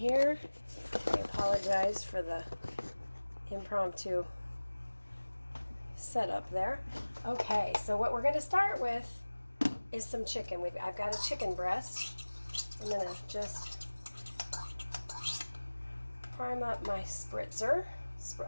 I apologize for the impromptu setup there. Okay, so what we're going to start with is some chicken. I've got a chicken breast. I'm going to just prime up my spritzer.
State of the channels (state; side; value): inverted; both; correlation -1.00